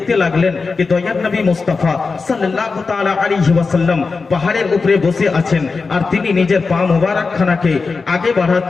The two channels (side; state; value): right; quieter; 4.4 dB